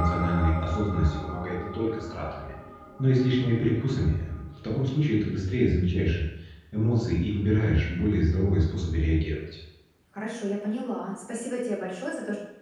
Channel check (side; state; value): both; identical; correlation 1.00